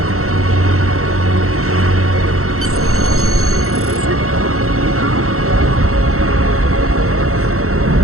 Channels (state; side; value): late; left; 0.64 ms